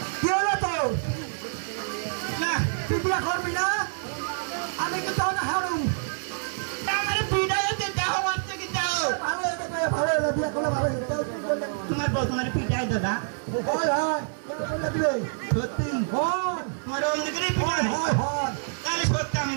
কি হলো তো? না তুই বিয়া করবি না? আমি কি তাও না হারু আমার পিটাই দেহ মারছে কি দাও ভালো হবে বিয়া করলে ভালো হবে। তোমার বউ তোমার পিটাই দাদা? হয় হয় বলে দিবে সত্যি হয় তোমার অন্য করে পিটাই হয় হয় তাহলে সত্যি আমি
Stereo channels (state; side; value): silent; left; digital silence